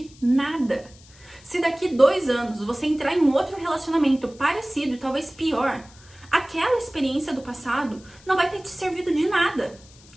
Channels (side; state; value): left; noise; hiss, 25 dB below the sound